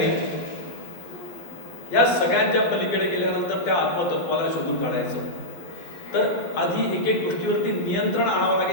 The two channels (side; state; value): right; late; 12 ms